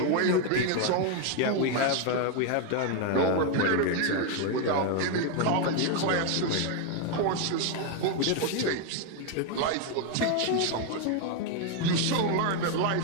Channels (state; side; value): different; both; correlation 0.01